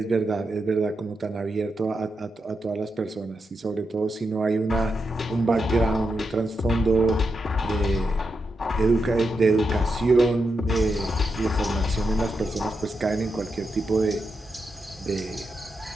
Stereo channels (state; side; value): normal; both; correlation 0.86